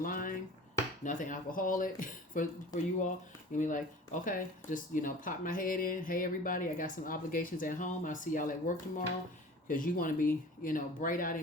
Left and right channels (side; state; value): both; normal; correlation 0.41